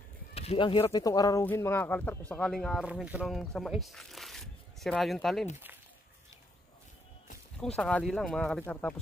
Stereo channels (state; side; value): normal; both; correlation 0.74